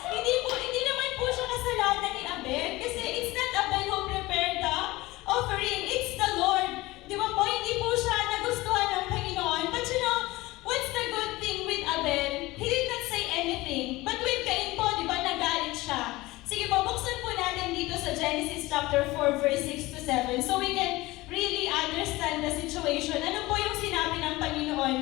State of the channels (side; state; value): right; quieter; 19.8 dB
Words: Hindi naman po siya kasalanan ni Abel kasi it's not Abel who prepared the offering, it's the Lord. Di ba po, hindi po siya nagustuhan ng Panginoon. But you know, what's the good thing with Abel? He did not say anything. But with Cain po, di ba, nagalit siya. Sige po, buksan po natin dito sa Genesis chapter 4, verse 6 to 7. So we can really understand the situation. Ano po yung sinabi ng